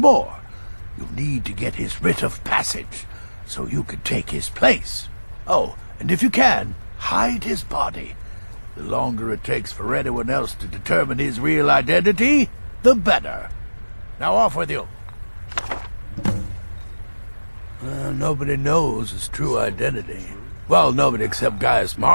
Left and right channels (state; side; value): inverted; both; correlation -1.00